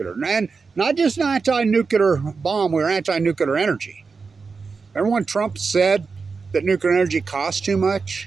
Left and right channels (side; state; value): left; quieter; 4.8 dB